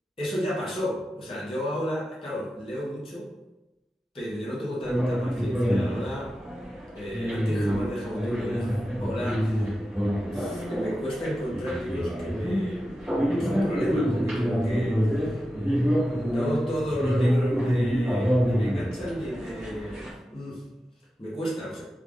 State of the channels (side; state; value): both; normal; correlation 0.91